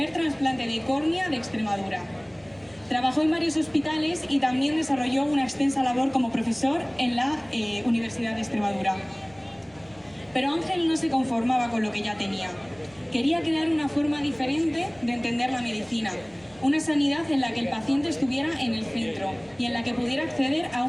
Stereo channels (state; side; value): noise; right; rumble, 29 dB below the sound